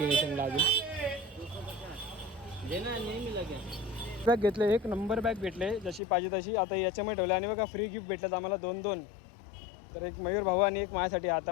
अजून बॅग घेतले, 1 नंबर बॅग भेटले जशी पाहिजे तशी. आता याच्यामध्ये ठेवले आणि बघा फ्री गिफ्ट भेटलं आम्हाला 2-2. तर एक मयूर भाऊ आणि एक माझ्यासाठी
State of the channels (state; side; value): drops out; right; at 6.0 s